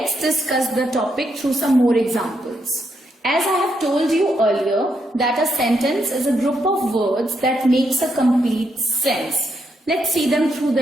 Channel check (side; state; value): both; normal; correlation 0.79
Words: discuss the topic through some more examples. As I have told you earlier that a sentence is a group of words that makes a complete sense. Let's see them through